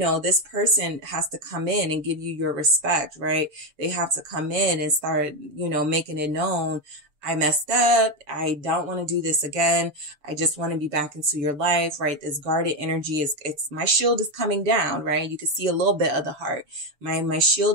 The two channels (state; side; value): late; left; 6.6 ms